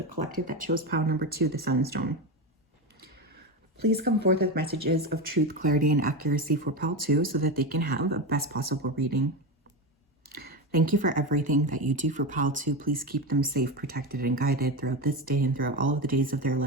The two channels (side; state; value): both; normal; correlation 0.18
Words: collective that chose pile number 2, the Sunstone? Please come forth with messages of truth, clarity, and accuracy for pile 2 so that they can have a best possible reading. Thank you for everything that you do for pile 2. Please keep them safe, protected, and guided throughout this day and throughout all of the days of their